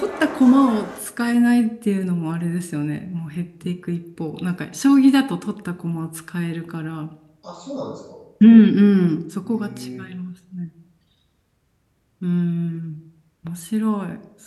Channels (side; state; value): both; identical; correlation 1.00